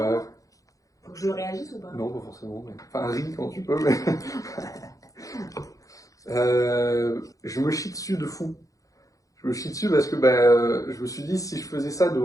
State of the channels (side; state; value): right; late; 0.16 ms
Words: Faut que je réagisse ou pas? Non, pas forcément. Mais... Enfin, ris quand tu peux, mais. Je me chie dessus de fou. Je me chie dessus parce que je me suis dit, si je faisais ça